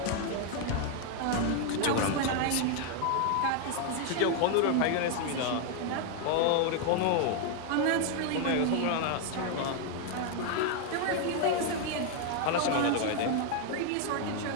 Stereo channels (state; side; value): different; both; correlation 0.01